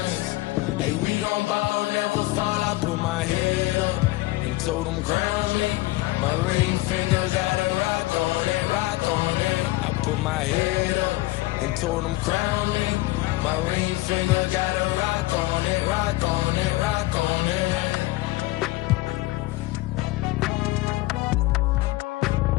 Hey, we gon' bow, never fall. I put my head up and told them crown me. My ring finger got a rock on it, rock on it. I put my head up and told them crown me. My ring finger got a rock on it, rock on it, rock on it.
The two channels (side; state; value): right; quieter; 19.4 dB